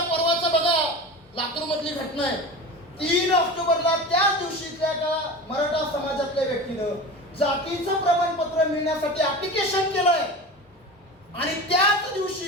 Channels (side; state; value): both; normal; correlation 0.31